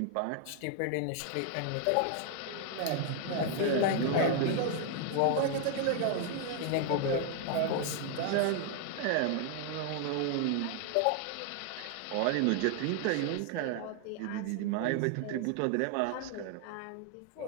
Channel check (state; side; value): different; both; correlation 0.00